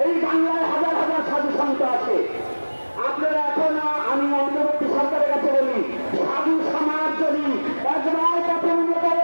এই বাংলায় হাজার হাজার সাধু সন্ত আছে। আপনারা এখনো, আমি অন্তর্বর্তী সরকারের কাছে বলি, সাধু সমাজ যদি একবার পথে নেমে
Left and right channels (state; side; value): inverted; both; correlation -1.00